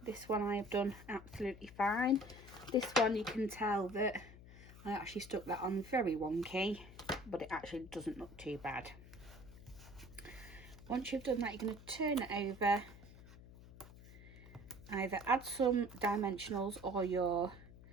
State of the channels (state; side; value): noise; left; hum, 18 dB below the sound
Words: This one I have done absolutely fine. This one, you can tell that I actually stuck that on very wonky, but it actually doesn't look too bad. Once you've done that, you're going to turn it over, either add some dimensionals or your